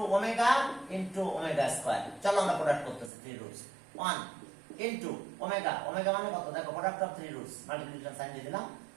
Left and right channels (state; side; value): drops out; left; at 3.1 s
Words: ওমেগা স্কয়ার। চলো আমরা প্রোডাক্ট করতেছি three roots, 1 into omega, omega মানে কত? দেখো product of three roots, multiplication sign দিয়ে দিলাম।